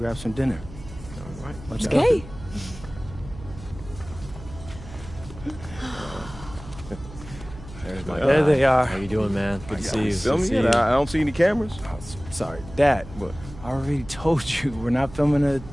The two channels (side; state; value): right; noise; hum, 15 dB below the sound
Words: some dinner. All right. Let's go. There they are. How you doing, man? Good to see you. Filming it? I don't see any cameras. Oh, sorry. Dad, What? I already told you, we're not filming a